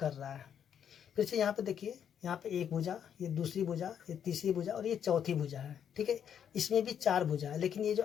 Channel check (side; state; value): right; quieter; 8.7 dB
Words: रहा है। फिर से यहाँ पे देखिए, यहाँ पे एक भुजा, ये दूसरी भुजा, ये तीसरी भुजा और ये चौथी भुजा है। ठीक है, इसमें भी चार भुजा है, लेकिन ये जो